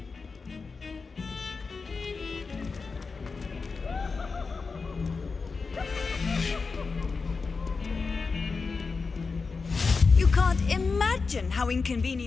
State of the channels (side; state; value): right; quieter; 4.5 dB